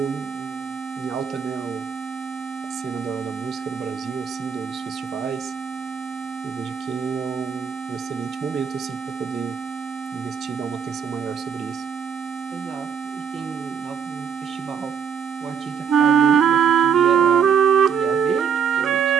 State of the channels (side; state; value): left; quieter; 7.1 dB